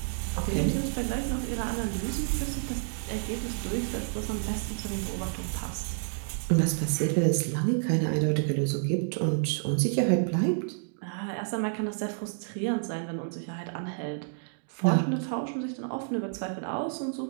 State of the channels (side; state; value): left; silent; digital silence